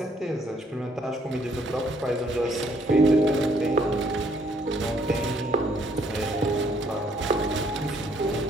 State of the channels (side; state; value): both; normal; correlation 0.67